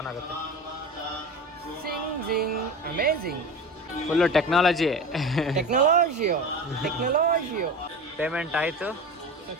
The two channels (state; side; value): normal; both; correlation 0.30